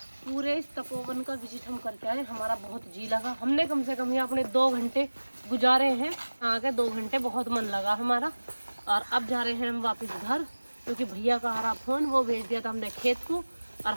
पूरे इस तपोवन का विजिट हम करके आए, हमारा बहुत जी लगा। हमने कम से कम यहाँ अपने 2 घंटे गुजारे हैं, आगे 2 घंटे बहुत मन लगा हमारा। और अब जा रहे हैं हम वापस घर, क्योंकि भैया का आ रहा फोन, वो भेज दिया था हमने खेत को। और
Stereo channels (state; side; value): inverted; both; correlation -1.00